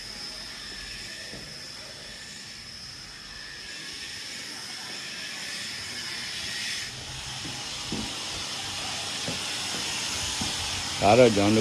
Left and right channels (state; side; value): identical; both; correlation 1.00